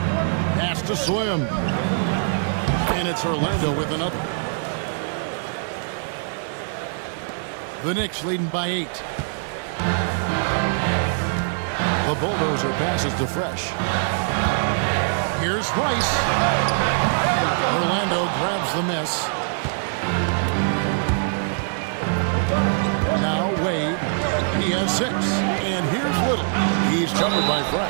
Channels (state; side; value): silent; left; digital silence